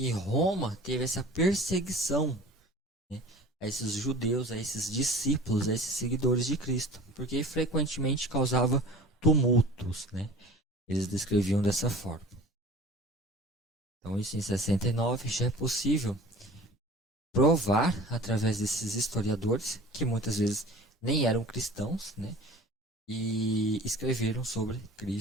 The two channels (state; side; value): normal; both; correlation 0.42